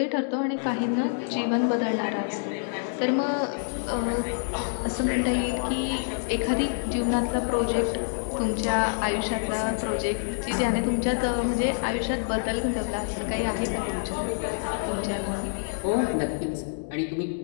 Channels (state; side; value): silent; right; digital silence